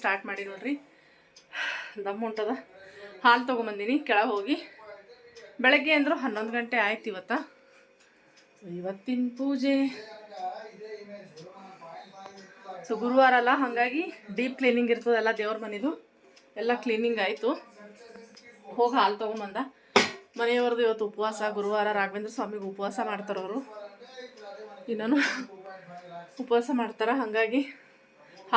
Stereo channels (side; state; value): both; identical; correlation 1.00